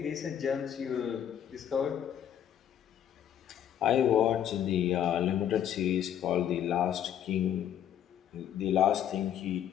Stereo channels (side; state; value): right; quieter; 9.9 dB